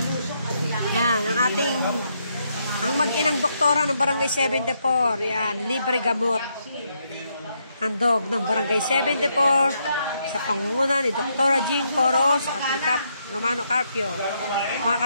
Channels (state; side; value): inverted; both; correlation -0.77